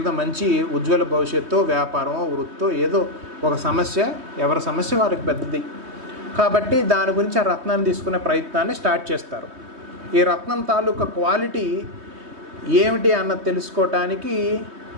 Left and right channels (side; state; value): left; late; 3.2 ms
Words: మంచి ఉజ్వల భవిష్యత్తు, వ్యాపారం, వృత్తో, ఏదో ఒక సమస్య, ఎవరి సమస్య వారికి పెద్దది కాబట్టి దాని గురించి ఆ రత్నాన్ని తీసుకునే ప్రయత్నాన్ని స్టార్ట్ చేస్తారు. ఈ రత్నం తాలూకా క్వాలిటీ ఏమిటి అన్నది తెలుసుకోవటానికి